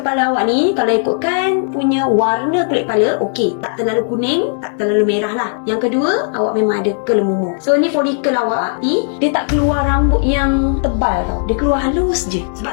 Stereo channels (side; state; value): right; silent; digital silence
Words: awak ni, kalau ikutkan punya warna kulit kepala, okey, tak terlalu kuning, tak terlalu merah lah. Yang kedua, awak memang ada kelemumur. So ni folikel awak ni, dia tak keluar rambut yang tebal tau. Dia keluar halus je.